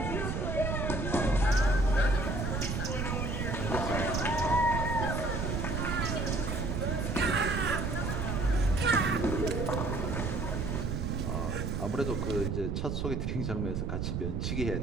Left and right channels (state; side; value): noise; right; rumble, 1 dB below the sound